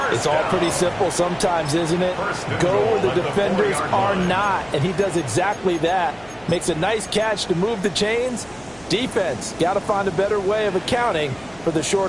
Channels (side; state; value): right; noise; hum, 26 dB below the sound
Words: It's all pretty simple sometimes, isn't it? Go where the defenders are not, and he does exactly that. Makes a nice catch to move the chains. Defense, got to find a better way of accounting for the